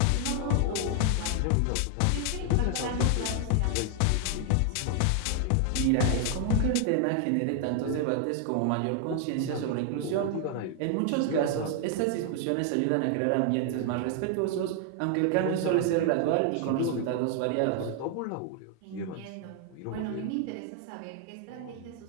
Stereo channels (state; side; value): different; both; correlation 0.00